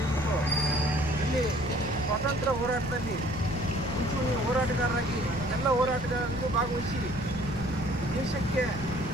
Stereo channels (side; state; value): left; noise; rumble, 10 dB below the sound